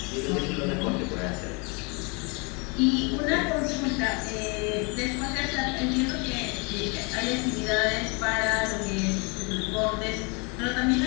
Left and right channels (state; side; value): quieter; right; 31.6 dB